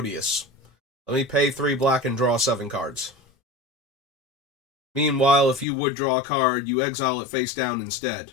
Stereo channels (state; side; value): drops out; right; at 5.7 s